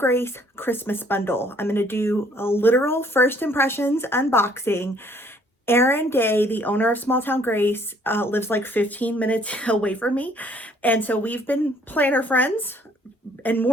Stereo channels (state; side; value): normal; both; correlation 0.61